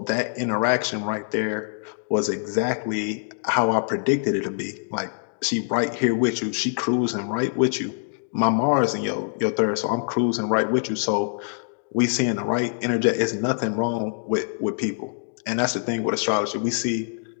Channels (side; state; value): right; silent; digital silence